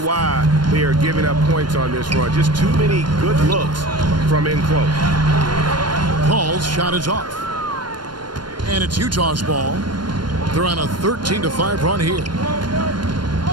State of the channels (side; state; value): left; late; 0.71 ms